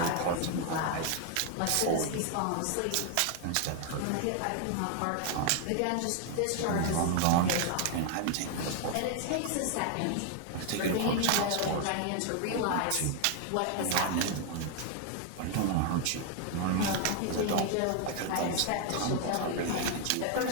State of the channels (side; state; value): both; different; correlation 0.00